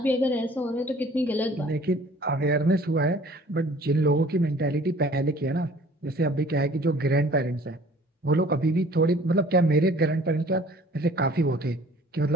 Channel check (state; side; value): normal; both; correlation 0.51